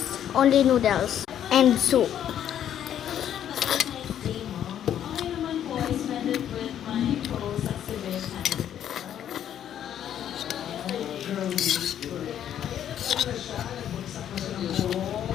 only noodles and soup.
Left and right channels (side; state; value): right; quieter; 10.2 dB